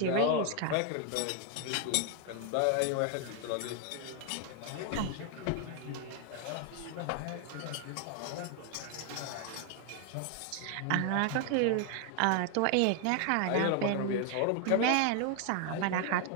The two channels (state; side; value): different; both; correlation 0.00